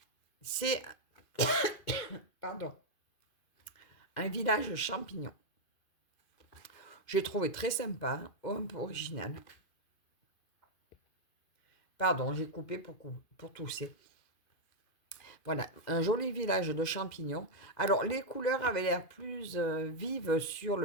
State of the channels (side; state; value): right; late; 2.5 ms